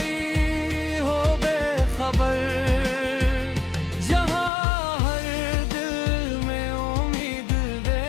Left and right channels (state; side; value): drops out; right; at 4.5 s